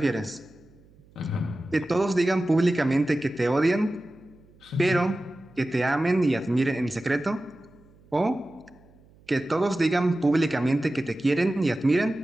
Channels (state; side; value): noise; right; hum, 28 dB below the sound